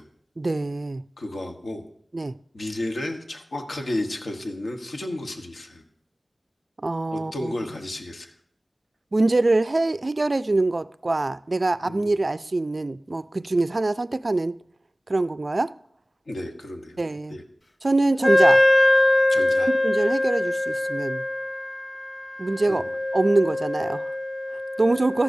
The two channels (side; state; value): both; normal; correlation 0.97